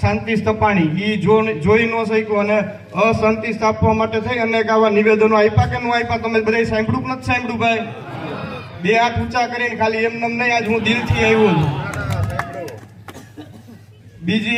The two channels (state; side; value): identical; both; correlation 1.00